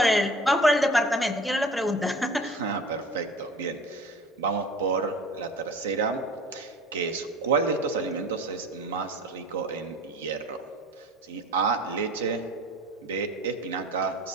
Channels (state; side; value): normal; both; correlation 0.41